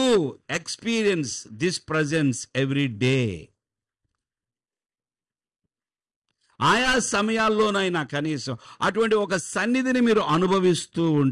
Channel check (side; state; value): both; identical; correlation 1.00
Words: experience this presence every day, ఆయా సమయాల్లోనైనా కనీసం అటువంటి ఒక సన్నిధిని మీరు అనుభవిస్తూ